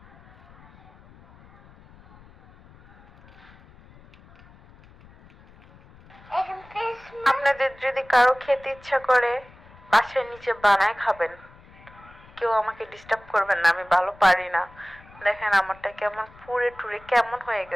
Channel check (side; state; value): left; noise; rumble, 24 dB below the sound